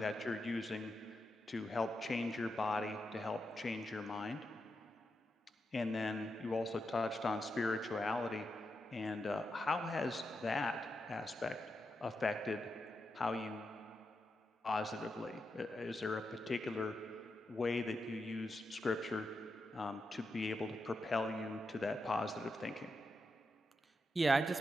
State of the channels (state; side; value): normal; both; correlation 0.86